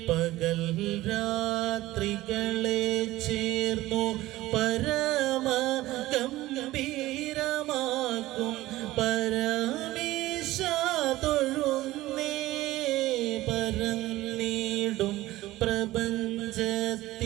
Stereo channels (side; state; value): left; quieter; 17.0 dB